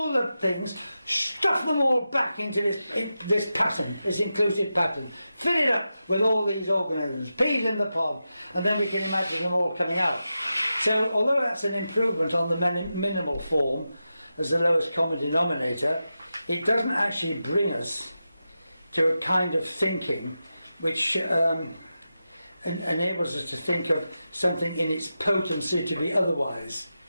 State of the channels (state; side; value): inverted; both; correlation -0.90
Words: the things, stuff them all back into this pattern, this inclusive pattern. Fill it up with all these organisms, peas in the pod, and then we can imagine them all coming out. So, although that's an improvement on the minimal form as the lowest common denominator, it doesn't actually bring us to a kind of thinking which enables us to think of something in its potency to be otherwise.